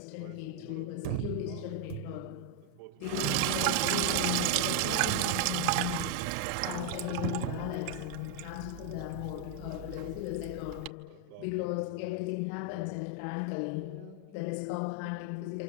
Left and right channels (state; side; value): different; both; correlation 0.00